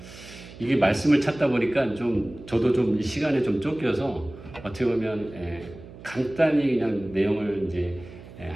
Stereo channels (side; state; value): right; noise; hum, 17 dB below the sound